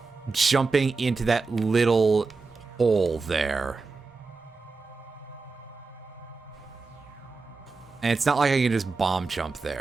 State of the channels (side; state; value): left; quieter; 4.2 dB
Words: jumping into that little hole there. And it's not like I can just bomb jump